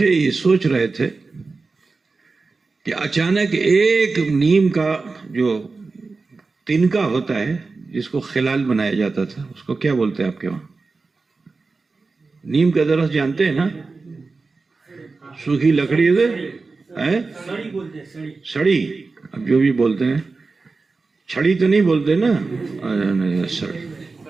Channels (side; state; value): left; quieter; 4.0 dB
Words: یہ سوچ رہے تھے کہ اچانک ایک نیم کا جو تنکا ہوتا ہے جس کو خلال بنایا جاتا تھا، اس کو کیا بولتے ہیں آپ کے وہاں؟ نیم کا درخت جانتے ہیں نا، سوکھی لکڑی ہے، سڑی، اب جو بھی بولتے ہیں، چھڑی تو نہیں بولتے نا، سڑی۔